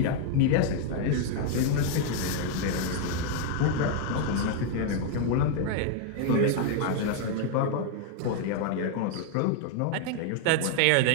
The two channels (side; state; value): both; different; correlation 0.00